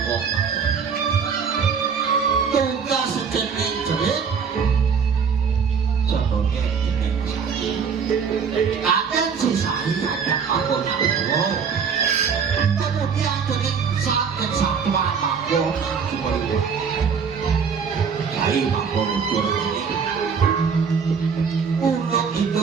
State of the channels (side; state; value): left; quieter; 6.2 dB